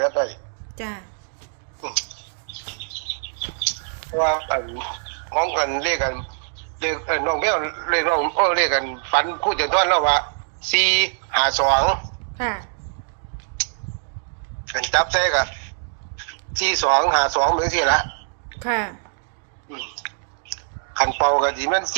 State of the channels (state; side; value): silent; left; digital silence